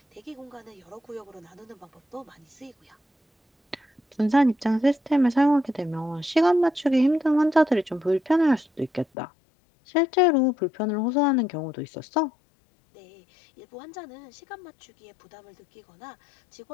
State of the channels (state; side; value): drops out; right; at 9.1 s